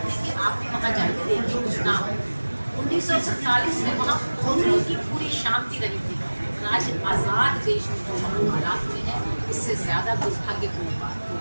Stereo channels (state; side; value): inverted; both; correlation -1.00